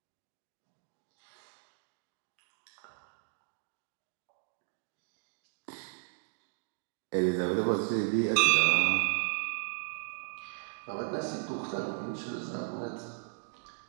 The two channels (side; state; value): left; silent; digital silence